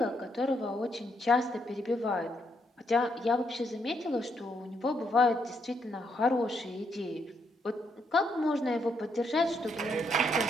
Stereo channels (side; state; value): both; normal; correlation 0.76